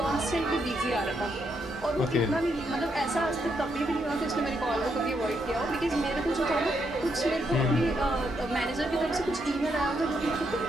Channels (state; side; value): normal; both; correlation 0.78